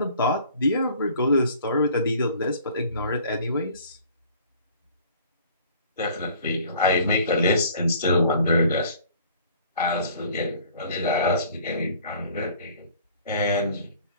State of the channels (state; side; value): inverted; both; correlation -0.52